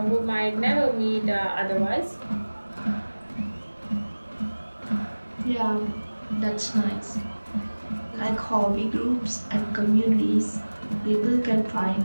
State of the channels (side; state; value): both; inverted; correlation -1.00